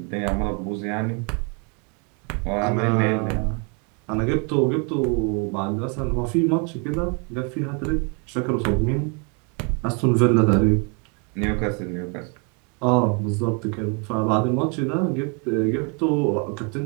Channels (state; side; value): quieter; left; 35.3 dB